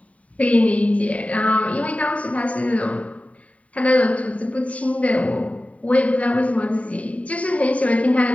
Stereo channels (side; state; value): right; late; 0.067 ms